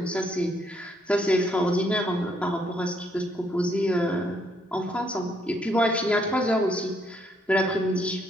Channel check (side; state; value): both; normal; correlation 0.71